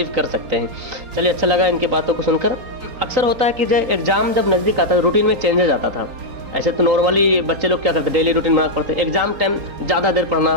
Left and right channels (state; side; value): late; left; 3.9 ms